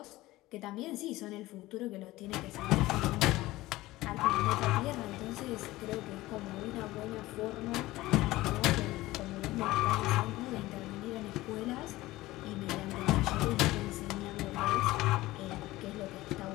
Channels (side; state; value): right; quieter; 18.0 dB